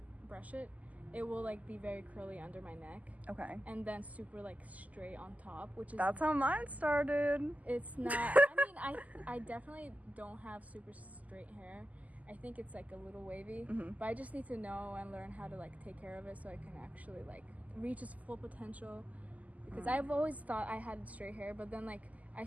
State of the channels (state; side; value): late; left; 0.075 ms